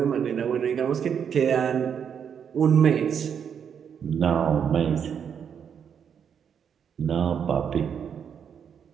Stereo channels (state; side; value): quieter; left; 7.7 dB